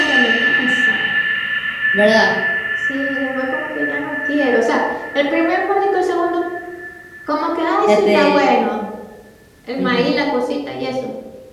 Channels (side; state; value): both; identical; correlation 1.00